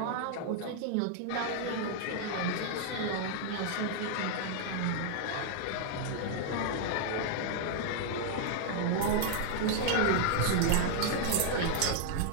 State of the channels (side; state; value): both; different; correlation -0.01